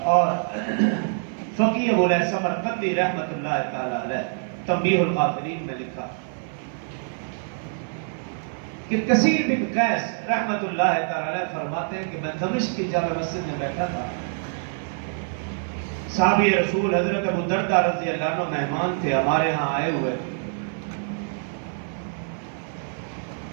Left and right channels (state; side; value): silent; left; 56 dB below the other